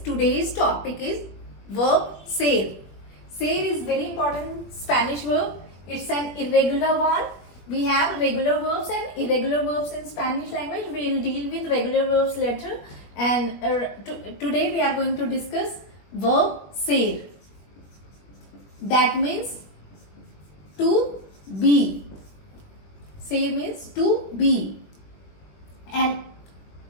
today's topic is Verb Ser. Ser is very important Spanish verb. It's an irregular one. We have regular verbs and irregular verbs in Spanish language. We will deal with regular verbs later. And today we are going to discuss Verb Ser. That means to be. Say means to be, and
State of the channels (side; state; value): right; late; 21 ms